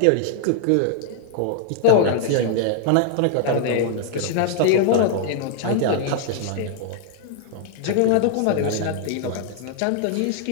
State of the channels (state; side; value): different; both; correlation 0.00